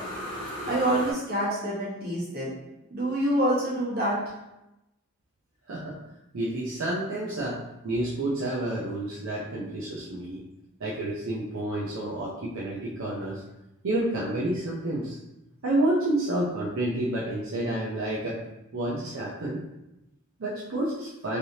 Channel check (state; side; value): normal; both; correlation 0.44